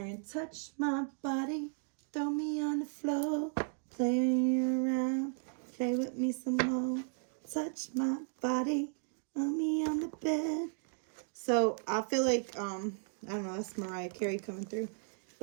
touch my body, throw me on the floor, play around, play with me some more, touch my body, throw me on the bed. So I feel like, I don't know, that's Mariah Carey coming through.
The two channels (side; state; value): left; silent; 54 dB below the other